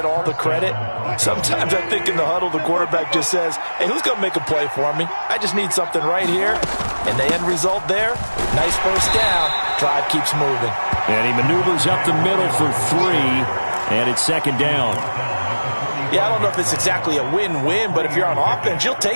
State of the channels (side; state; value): both; inverted; correlation -1.00